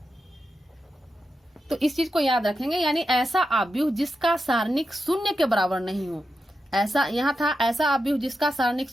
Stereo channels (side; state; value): both; normal; correlation 0.89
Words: तो इस चीज को याद रखेंगे। यानी ऐसा अवयव जिसका सारणिक शून्य के बराबर नहीं हो, ऐसा यहाँ था ऐसा अवयव जिसका सारणिक